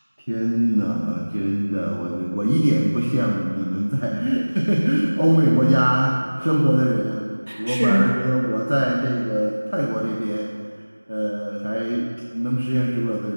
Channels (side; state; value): both; inverted; correlation -1.00